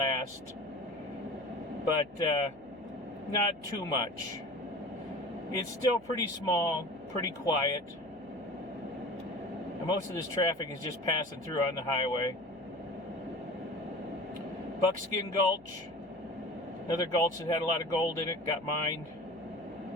but not too much. It's still pretty small, pretty quiet. And most of this traffic is just passing through on the highway. Buckskin Gulch. Another gulch that had a lot of gold in it, got mined.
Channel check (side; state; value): left; noise; hum, 27 dB below the sound